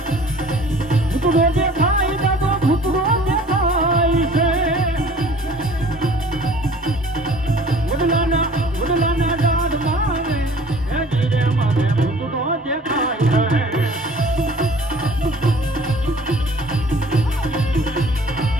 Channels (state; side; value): normal; both; correlation 0.50